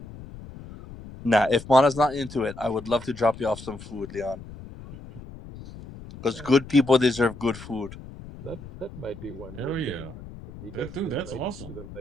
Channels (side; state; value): left; noise; rumble, 15 dB below the sound